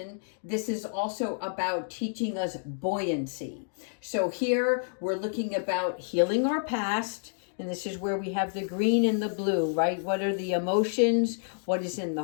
this is also about teaching us buoyancy. So here we're looking about healing our past. And this is where we have the green and the blue, right? What are the emotions? What is in the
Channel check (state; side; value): silent; right; digital silence